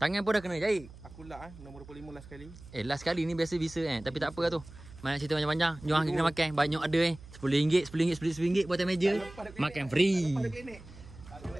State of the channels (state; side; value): noise; right; hum, 18 dB below the sound